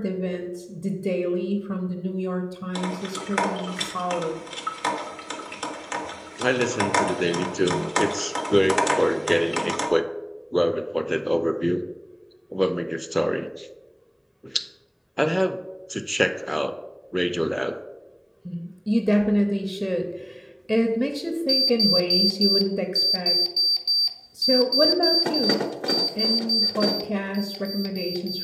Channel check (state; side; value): identical; both; correlation 1.00